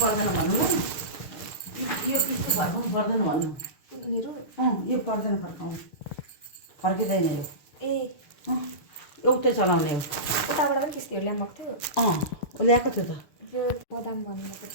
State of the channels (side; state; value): right; late; 6.9 ms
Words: पर्दैन भन्नु ल यो पिस त फर्काउनु पर्दैन भन्नु यो पर्दैन फर्काउनु फर्किँदैन यो एउटै चलाउने हो उताबाट पनि किस्तीहरू ल्याएको थियो ल्याएको थियो त त्यो बदाम भन्नुभएको